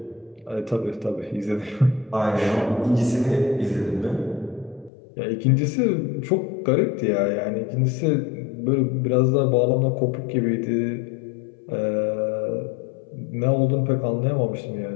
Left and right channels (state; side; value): drops out; right; at 4.9 s